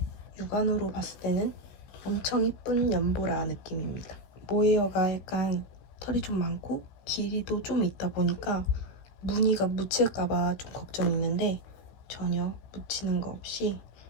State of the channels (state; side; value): late; right; 16 ms